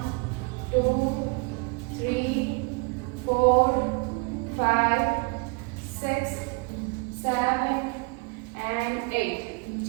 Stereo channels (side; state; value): left; quieter; 29.5 dB